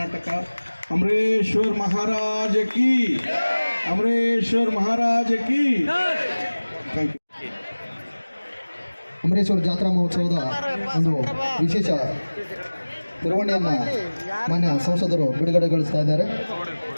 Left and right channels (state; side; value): inverted; both; correlation -1.00